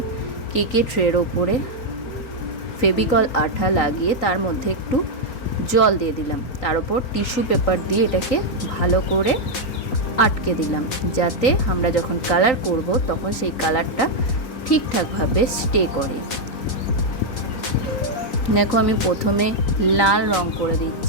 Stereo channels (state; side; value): late; right; 3.9 ms